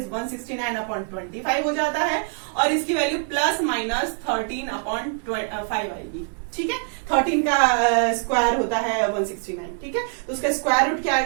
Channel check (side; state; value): left; silent; 63 dB below the other